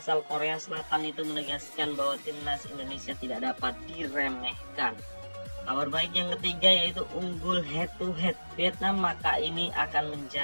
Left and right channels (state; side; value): inverted; both; correlation -1.00